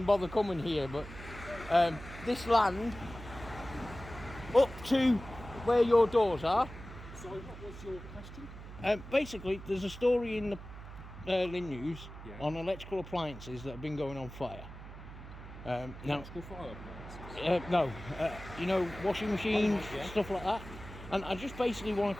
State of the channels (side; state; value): right; noise; hum, 13 dB below the sound